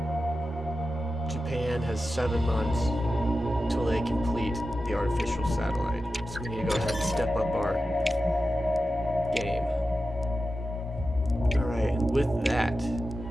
Japan has 7 months until they complete the artificial satellite. So we need to go ahead and step up our game. Alright, and with that,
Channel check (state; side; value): normal; both; correlation 0.92